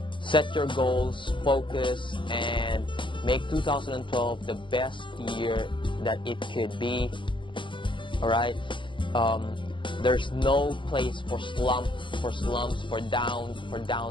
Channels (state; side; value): late; right; 0.24 ms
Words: set your goals, focus, and make 2012 the best year that it could be. All right. There's no place for slumps, for